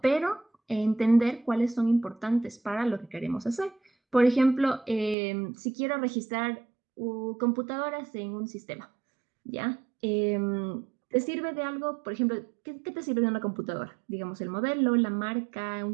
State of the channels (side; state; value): left; drops out; at 5.2 s